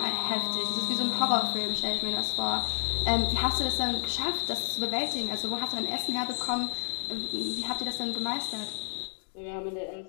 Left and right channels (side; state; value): right; silent; digital silence